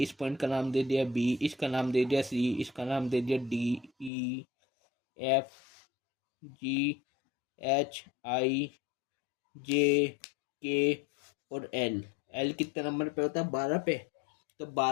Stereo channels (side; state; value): right; drops out; at 4.1 s